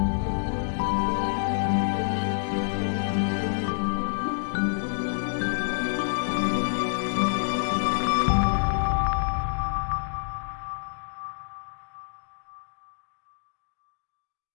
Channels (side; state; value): right; silent; digital silence